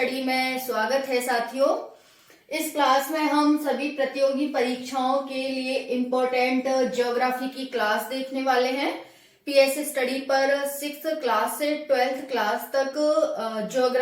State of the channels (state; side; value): identical; both; correlation 1.00